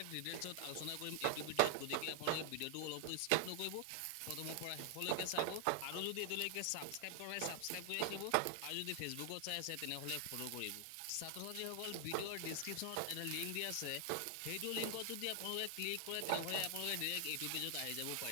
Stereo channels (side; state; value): both; different; correlation 0.00